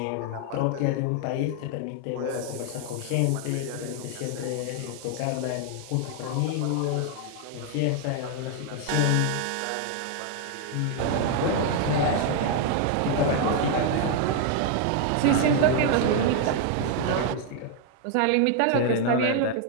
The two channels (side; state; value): both; different; correlation 0.00